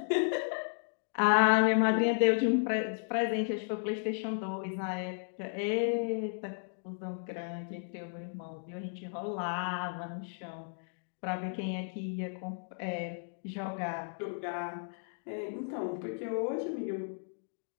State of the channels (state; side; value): silent; right; digital silence